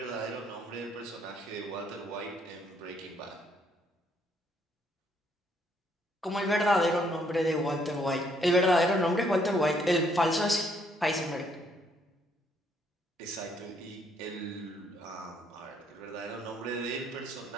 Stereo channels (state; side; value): normal; both; correlation 0.69